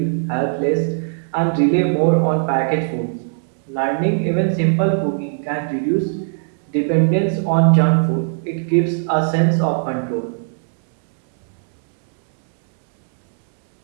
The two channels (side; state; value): left; silent; digital silence